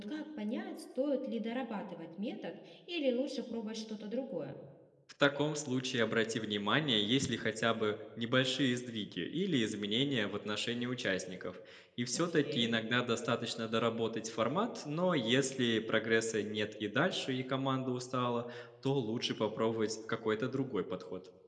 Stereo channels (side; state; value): both; identical; correlation 1.00